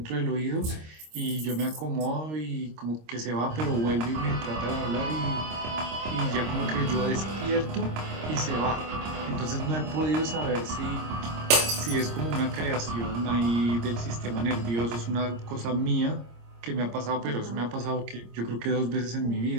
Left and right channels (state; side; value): late; left; 26 ms